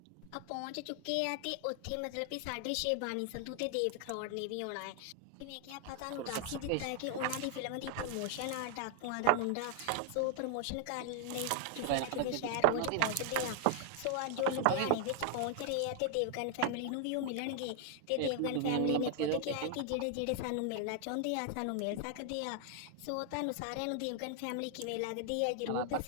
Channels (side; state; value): both; different; correlation 0.00